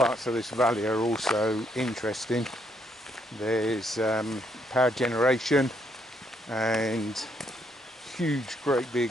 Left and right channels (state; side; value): normal; both; correlation 0.73